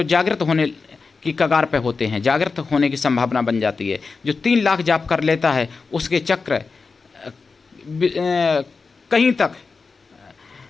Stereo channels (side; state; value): right; quieter; 4.5 dB